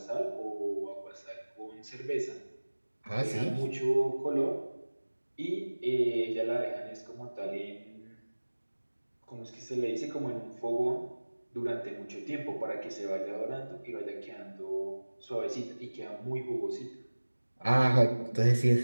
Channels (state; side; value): inverted; both; correlation -1.00